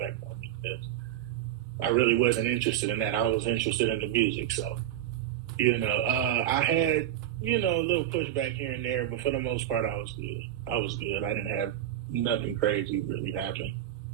on me, because I really wasn't interested in that. I was interested in the music. So, I had, a little pushback here and there, but for the most part, I was good. I didn't have nothing crazy really happen.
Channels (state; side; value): quieter; left; 11.7 dB